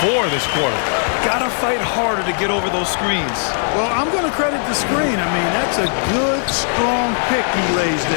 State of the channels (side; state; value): right; silent; digital silence